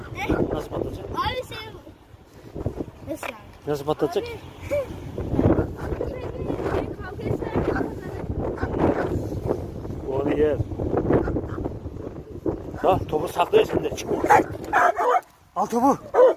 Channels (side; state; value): both; identical; correlation 1.00